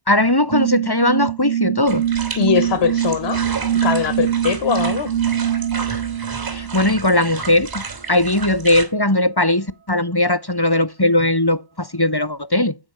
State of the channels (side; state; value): right; late; 1.1 ms